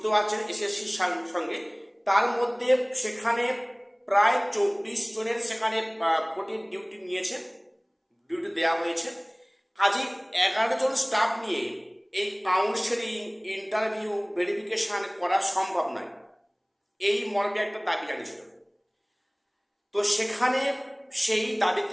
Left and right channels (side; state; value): both; identical; correlation 1.00